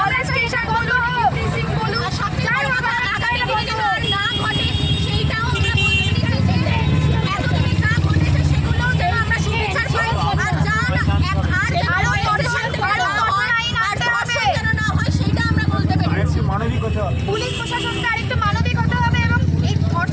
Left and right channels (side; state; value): both; identical; correlation 1.00